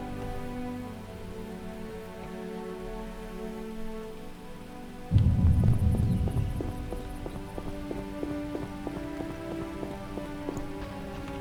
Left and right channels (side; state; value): both; identical; correlation 1.00